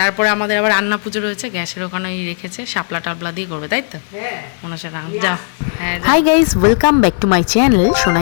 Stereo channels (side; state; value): right; silent; digital silence